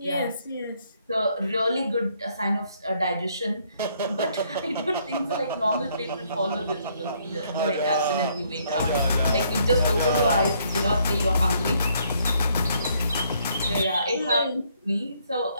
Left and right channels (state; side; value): inverted; both; correlation -0.68